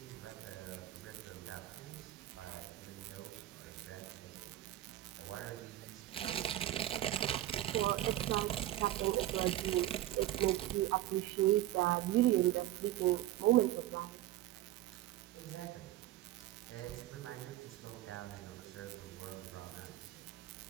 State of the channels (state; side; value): quieter; left; 14.6 dB